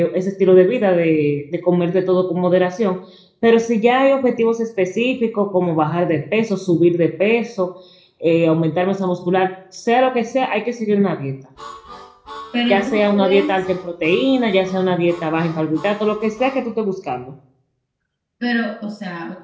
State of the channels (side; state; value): both; identical; correlation 1.00